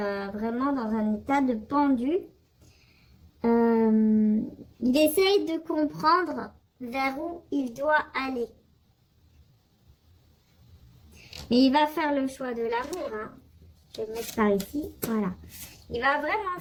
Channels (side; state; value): both; identical; correlation 1.00